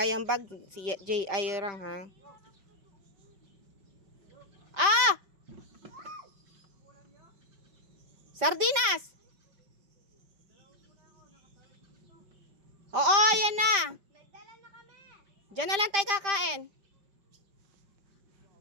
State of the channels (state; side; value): late; left; 5.1 ms